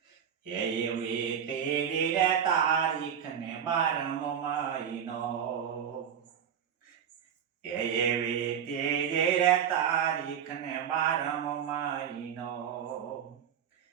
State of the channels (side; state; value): left; quieter; 8.4 dB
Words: એવી તેરી રે તારીખ ને 12મો મહિનો, એવી તેરી રે તારીખ ને 12મો મહિનો,